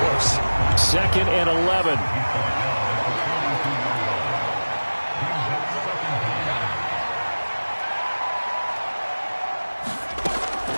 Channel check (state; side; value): inverted; both; correlation -1.00